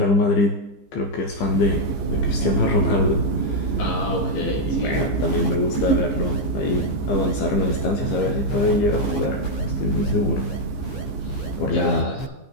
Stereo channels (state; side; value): late; right; 15 ms